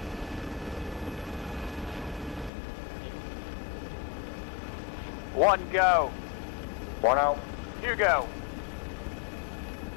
One, go. One out. You go.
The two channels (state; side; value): drops out; right; at 2.5 s